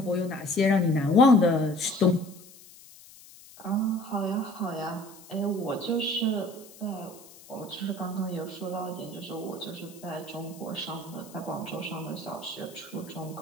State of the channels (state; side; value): noise; left; hiss, 21 dB below the sound